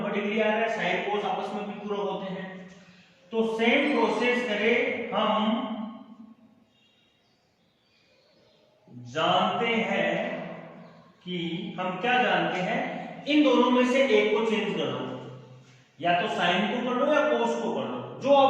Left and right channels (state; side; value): identical; both; correlation 1.00